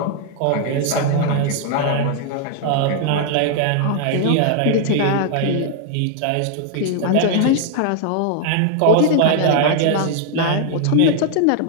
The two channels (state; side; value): different; both; correlation 0.00